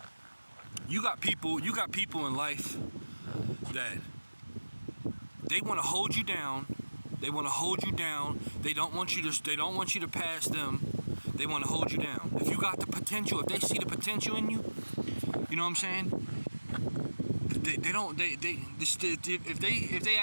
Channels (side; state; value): both; inverted; correlation -1.00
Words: you got people in life that they want to hold you down. They want to hold you down. They don't want you to pass them. They want to hold you down. If you got the potential, if they see the potential in you, you know what I'm saying? If they